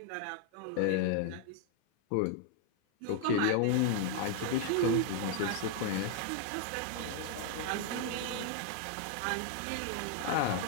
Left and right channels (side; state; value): both; different; correlation 0.00